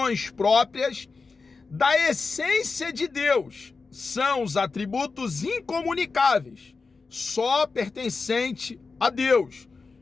próprias da essência de Deus. São os atributos incomunicáveis, só pertencente a Deus.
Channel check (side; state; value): right; quieter; 4.4 dB